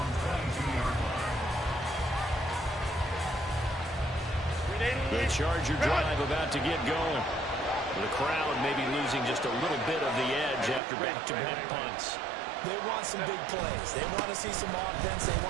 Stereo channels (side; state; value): left; drops out; at 10.8 s